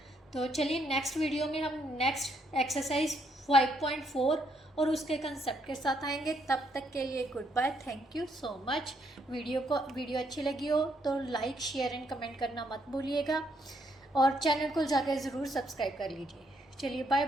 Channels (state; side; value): normal; both; correlation 0.73